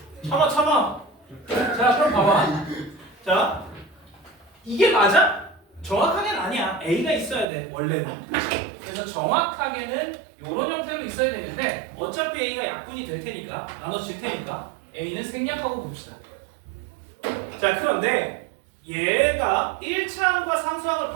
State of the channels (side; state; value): left; drops out; at 7.5 s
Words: 참아. 자, 그럼 봐봐. 자, 이게 맞아? 정확하게는 아니야. A가 있어야 돼, 원래는. 그래서 정확하게는 이런 형태로 있어야 되는데 어차피 A가 약분이 될 테니까, 나눠질 테니까 A는 생략하고 봅시다. 자, 그런데 얘가 1차항과 상수항을